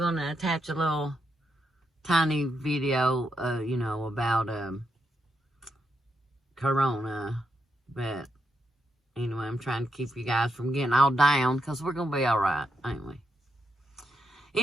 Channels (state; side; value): normal; both; correlation 0.82